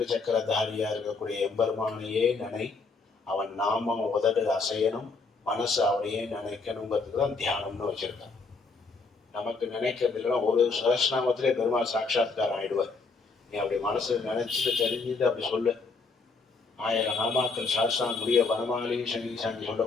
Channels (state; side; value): quieter; right; 4.2 dB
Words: சக்கரதாரியா இருக்கக்கூடிய எம்பெருமானையே நினை, அவன் நாமம் உதடு அசையணும், மனசு அவனையே நினைக்கணுங்கிறதுக்கு தான் தியானம்னு வச்சிருக்கான். நமக்கு நினைக்கிறது இல்லைன்னா ஒரு சஹஸ்ரநாமத்திலே பெருமாள் சாட்சாத்காரம் ஆயிடுவார். நீ அப்படி மனசு நினைச்சிட்டு தெரிஞ்சுட்டு அப்படி சொல்லு. 1000 நாமாக்கள் சாஸ்திரம் முடிய வனமாலி சங்கீசாங்கி